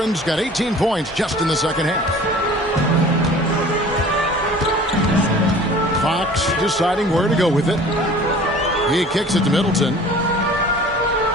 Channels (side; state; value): both; normal; correlation 0.46